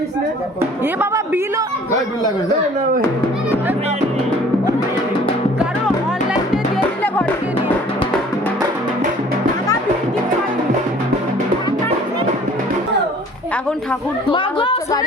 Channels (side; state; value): both; normal; correlation 0.51